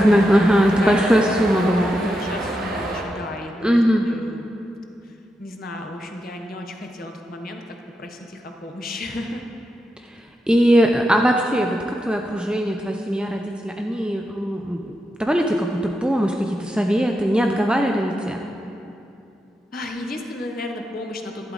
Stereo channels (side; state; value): both; normal; correlation 0.86